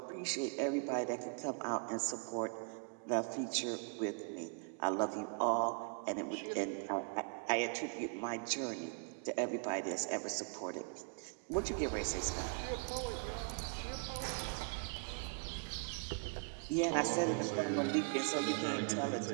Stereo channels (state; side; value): quieter; left; 37.3 dB